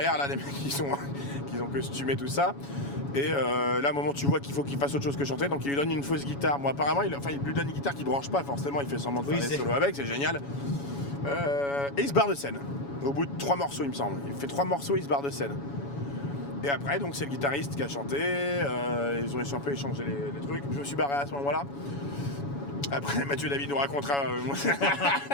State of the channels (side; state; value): right; late; 7.1 ms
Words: là, les mecs qui ont costumé tout ça. Et là, à un moment, tu vois qu'il faut qu'il fasse autre chose que chanter, donc il lui donne une fausse guitare. Moi, apparemment, il lui donne une guitare qui branche pas, forcément, il fait semblant de faire des solos avec, c'est génial. Et il se barre de scène. Au bout de 3 morceaux, il me semble. Il fait 3 morceaux, il se barre de scène. Et après, donc, c'est le guitariste qui a chanté. Ils ont un peu échangé les trucs. Je me suis barré à ce moment-là. Après, Mathieu David nous racontera.